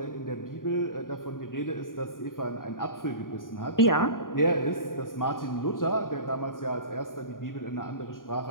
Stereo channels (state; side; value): late; right; 0.90 ms